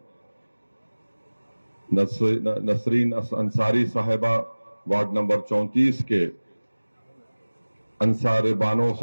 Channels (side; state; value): both; inverted; correlation -1.00